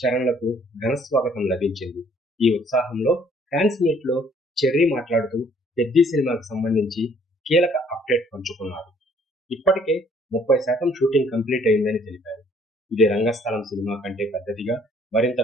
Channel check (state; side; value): normal; both; correlation 0.61